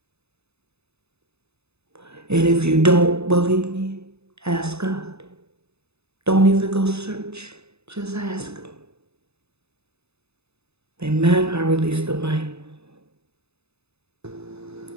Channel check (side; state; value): left; late; 0.80 ms